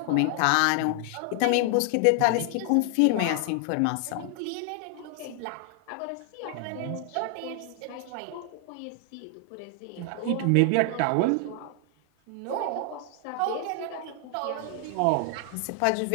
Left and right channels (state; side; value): different; both; correlation 0.00